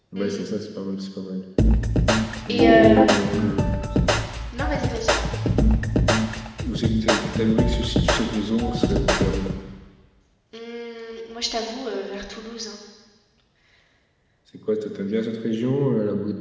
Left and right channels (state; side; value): identical; both; correlation 1.00